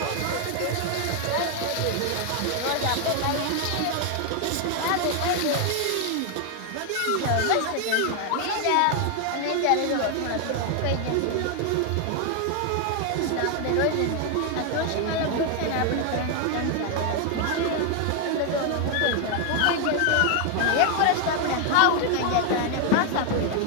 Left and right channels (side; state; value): both; different; correlation 0.00